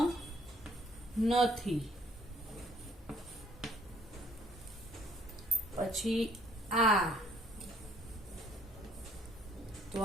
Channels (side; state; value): both; normal; correlation 0.61